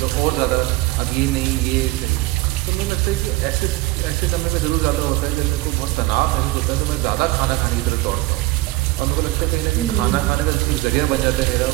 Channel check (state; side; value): quieter; left; 19.4 dB